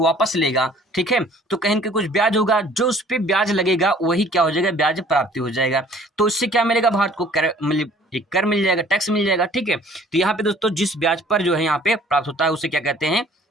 लेगा, ठीक है, तो कहीं ना कुछ ब्याज होगा, जो उस पर ब्याज लगेगा वही क्या हो जाएगा, ब्याज प्राप्ति हो जाएगा। तो इससे क्या मिलेगा, भारत को कर मिल जाएगा, टैक्स मिल जाएगा। ठीक है, तो यहाँ पे दोस्तों जिस ब्याज पर जो है यहाँ पे प्राप्त होता है उसे क्या कहते हैं,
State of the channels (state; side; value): normal; both; correlation 0.54